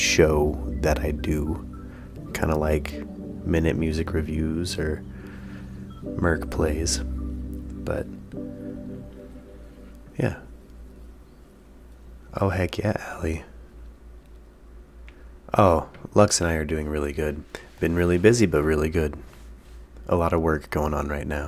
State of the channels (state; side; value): identical; both; correlation 1.00